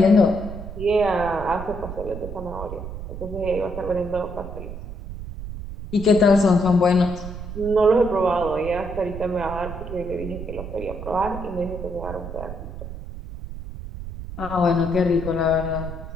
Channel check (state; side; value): noise; right; rumble, 9 dB below the sound